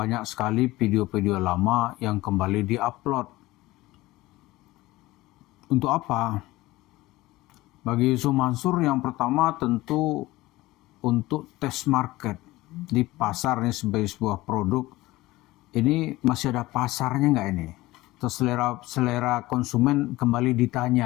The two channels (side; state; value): right; quieter; 18.7 dB